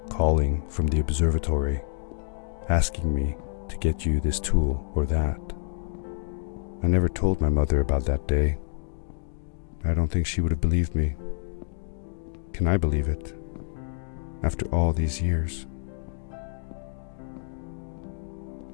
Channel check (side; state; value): right; silent; digital silence